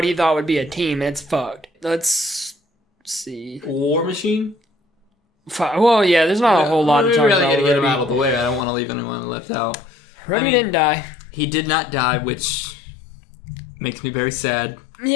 he thought would be a team and it's fucked. Let's see. War Machine? Well, yeah, there's not a whole lot to talk really about. gotta get him Rhodey. out of the way. I don't want to leave anyone left out. Rhodey didn't die. He did not die, which makes me very sad.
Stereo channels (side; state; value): right; drops out; at 8.7 s